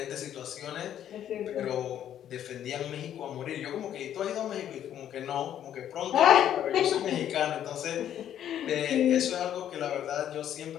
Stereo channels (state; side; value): quieter; right; 10.5 dB